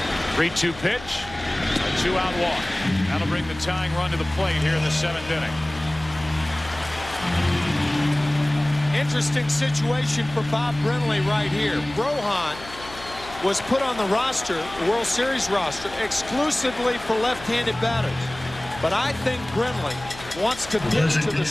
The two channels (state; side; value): noise; left; hum, 16 dB below the sound